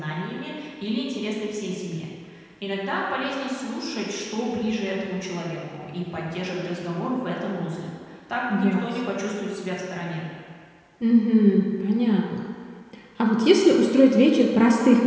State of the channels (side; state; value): both; identical; correlation 1.00